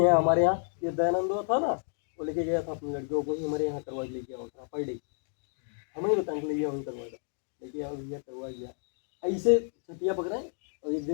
हमारे यहाँ। ये दयानंद था ना, वो लेके गया था अपनी लड़कियों को ही हमारे यहाँ करवा लेके आओ था पर डे, हमें ही बताने के लिए वहीं करवाया लेके आओ भैया करवा गया। ऐसे छटिया पकड़ाए और एक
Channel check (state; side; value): silent; right; 57 dB below the other